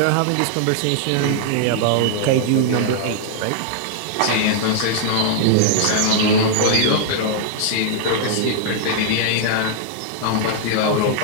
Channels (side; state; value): both; different; correlation -0.01